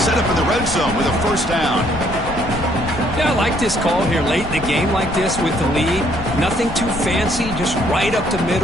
up in the red zone with a first down. Yeah, I like this call here late in the game like this with the lead. Nothing too fancy, just right up the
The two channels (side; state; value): left; noise; rumble, 11 dB below the sound